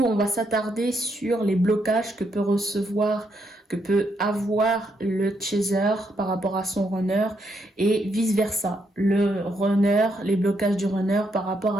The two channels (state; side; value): normal; both; correlation 0.77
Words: on va s'attarder sur les blocages que peut avoir le chaser par rapport à son runner et vice versa, les blocages du runner par rapport